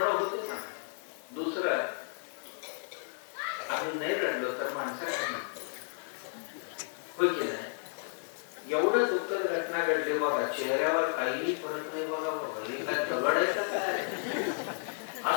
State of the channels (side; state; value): right; silent; 56 dB below the other